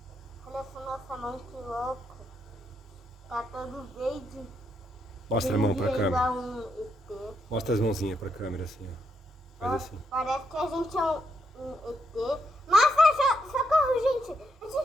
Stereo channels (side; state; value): both; normal; correlation 0.79